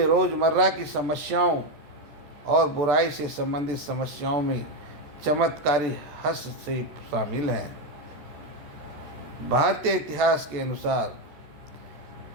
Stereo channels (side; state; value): left; late; 14 ms